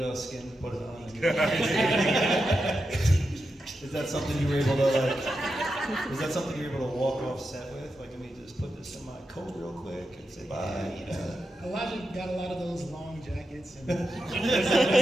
skin, put it on. Is that something you were able to is that something you were able to walk off set with? Like, let me just put this in my coat real quick and say bye. Elijah got a lot of those long jackets, and there's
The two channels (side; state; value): both; normal; correlation 0.88